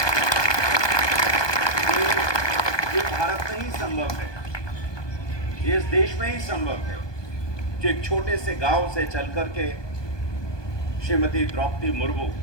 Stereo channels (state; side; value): late; right; 1.2 ms